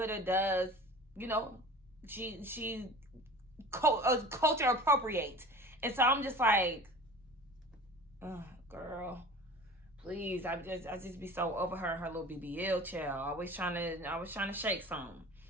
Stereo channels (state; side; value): normal; both; correlation 0.39